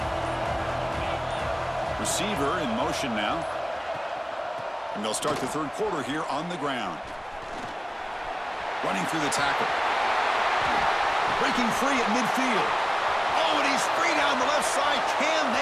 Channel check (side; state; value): both; identical; correlation 1.00